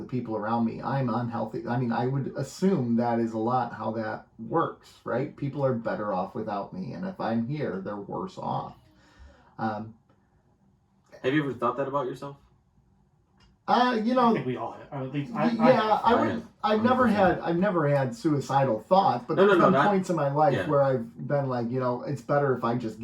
people around me. I'm unhealthy. I mean, I would assume that is a lot how that works, right? People are better off without me, and if I'm here, they're worse off. Have you ever thought that about yourself? I think we all have. At least I've never had suicidal thoughts, but there's been points in my life where I've been like, it's better if I just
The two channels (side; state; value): both; identical; correlation 1.00